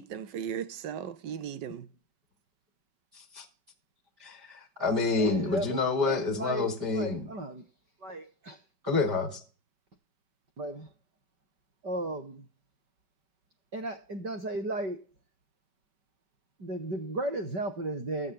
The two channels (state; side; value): late; left; 5.0 ms